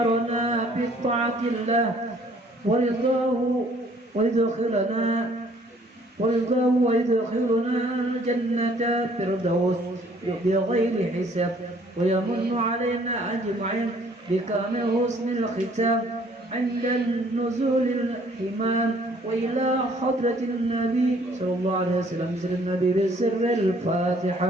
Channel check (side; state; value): both; normal; correlation 0.60